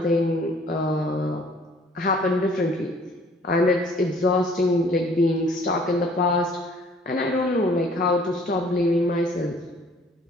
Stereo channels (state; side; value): normal; both; correlation 0.56